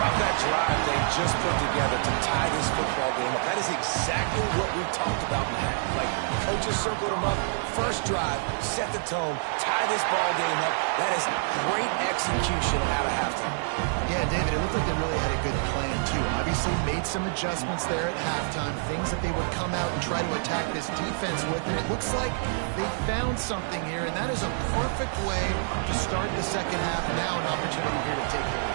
about that that drive they just put together to tie this football game up. That is exactly what we talked about, Matt. Like, coaches circled them up. First drive, set the tone, tie this ball game up. That is great execution out of halftime. Yeah, David, it looked like they really had a good plan, too. Obviously made some adjustments there at halftime, things that they would come out and try to attack this defense with, and it looks like they found something here, and that is a perfect way to start the second half. Now an opportunity here to take the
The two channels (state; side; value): silent; left; 58 dB below the other